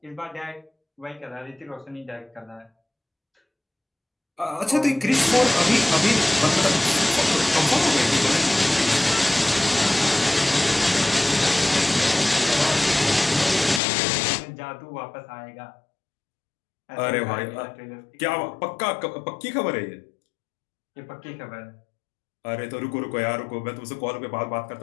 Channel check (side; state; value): right; drops out; at 13.8 s